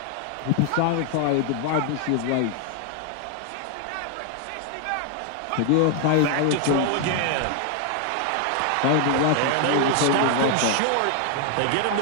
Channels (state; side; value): different; both; correlation 0.00